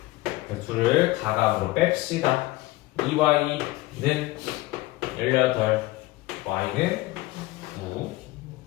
둘을 가감으로 뺍시다. 2Y는 18 Y는 9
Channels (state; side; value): quieter; right; 19.5 dB